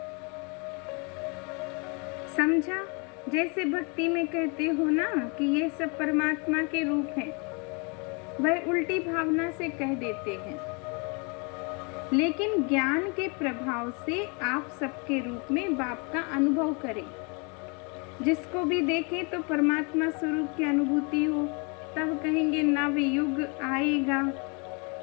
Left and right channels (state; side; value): quieter; right; 33.1 dB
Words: समझा? जैसे भक्ति में कहते हो ना कि ये सब परमात्मा के रूप हैं, वह उल्टी भावना से कह देते हैं, लेकिन ज्ञान के प्रभाव से आप सबके रूप में बाप का अनुभव करें। जिसको भी देखें तो परमात्मा स्वरूप की अनुभूति हो, तब कहेंगे नव युग आएगा।